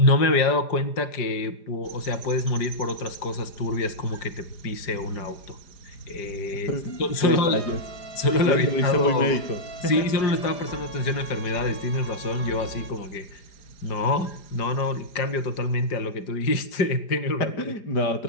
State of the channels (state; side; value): late; right; 4.9 ms